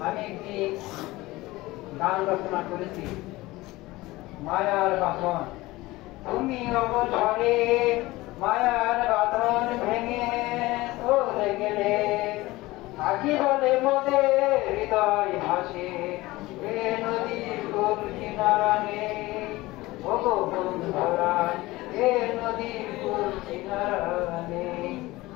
আমি একটি গান রচনা করেছি, মায়ার বাঁধন। তুমি অবসরে মায়ার বাঁধন ভেঙে চলে গেলে, আখি বলে মোদের হৃদয় ভাসে, এ নদীর কোল কিনারা নেই। ওগো বন্ধুরা, এ নদীর কোল কিনারা নেই।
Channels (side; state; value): right; quieter; 19.5 dB